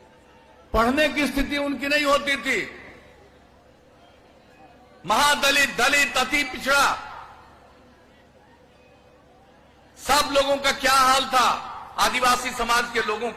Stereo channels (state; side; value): identical; both; correlation 1.00